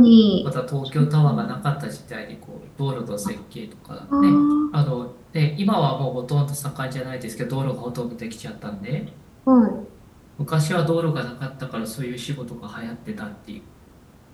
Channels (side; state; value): both; identical; correlation 1.00